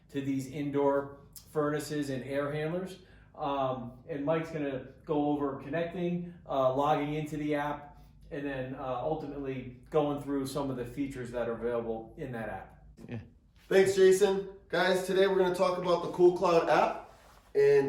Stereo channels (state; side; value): identical; both; correlation 1.00